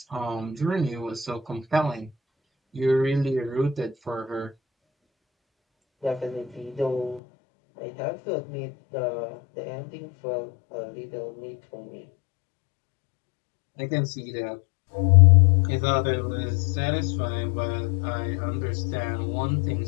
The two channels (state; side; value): drops out; right; at 7.2 s